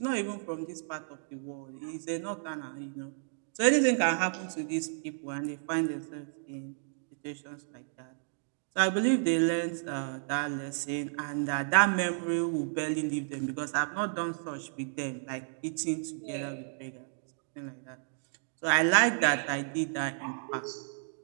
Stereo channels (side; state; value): left; silent; digital silence